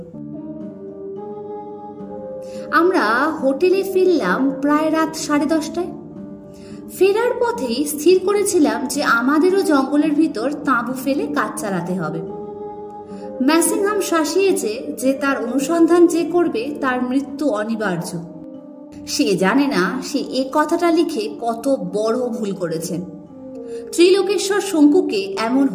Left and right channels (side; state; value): both; identical; correlation 1.00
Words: আমরা হোটেলে ফিরলাম প্রায় রাত 10:30টায়। ফেরার পথেই স্থির করেছিলাম যে আমাদেরও জঙ্গলের ভিতর তাঁবু ফেলে কাজ চালাতে হবে। ম্যাসিংহাম শাসিয়েছে যে তার অনুসন্ধান যে করবে তার মৃত্যু অনিবার্য। সে জানে না সে এ কথাটা লিখে কত বড় ভুল করেছেন। ত্রিলোকেশ্বর শঙ্কুকে এমন